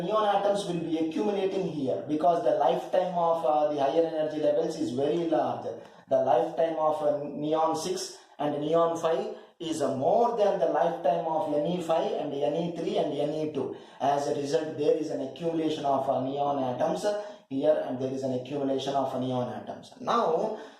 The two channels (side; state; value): both; identical; correlation 1.00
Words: neon atoms will be accumulating here because the lifetime of the higher energy levels is very large. The lifetime of neon 6 and neon 5 is more than the lifetime of Ne5 and Ne3 and Ne2. As a result, there is an accumulation of neon atoms here, and there is an accumulation of neon atoms. Now,